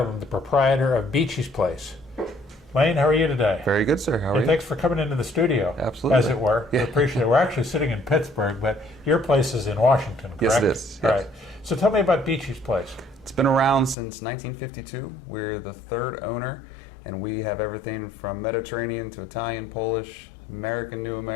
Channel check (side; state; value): right; drops out; at 14.0 s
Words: the proprietor of Beachy's Place. Lane, how are you today? Very good, sir. How are you? Thanks for coming into the studio. Absolutely. As it were. Yeah. I appreciate it. We're actually sitting in Pittsburgh, but your place is in Washington, correct? Yes, it is. All Yes. right. So tell me about Beachy's Place. It's been around since 1952. We're the third owner, and we have everything from Mediterranean to Italian, Polish, American, New